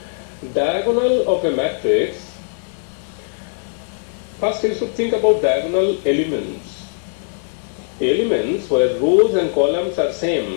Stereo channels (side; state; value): right; silent; digital silence